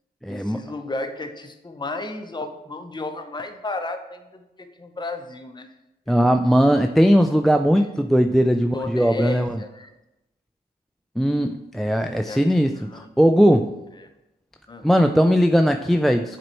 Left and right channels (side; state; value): both; normal; correlation 0.94